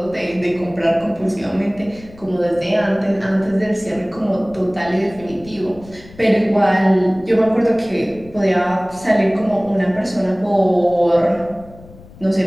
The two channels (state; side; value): noise; left; rumble, 21 dB below the sound